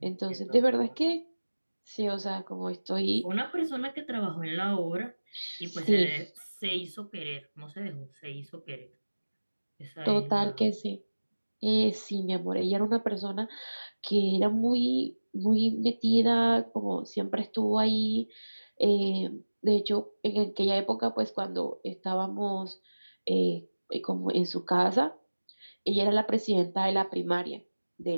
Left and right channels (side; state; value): both; inverted; correlation -1.00